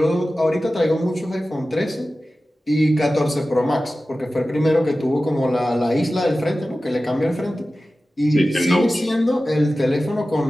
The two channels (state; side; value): normal; both; correlation 0.95